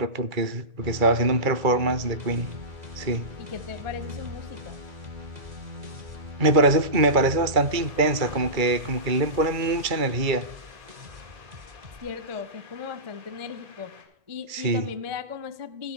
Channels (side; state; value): left; late; 2.3 ms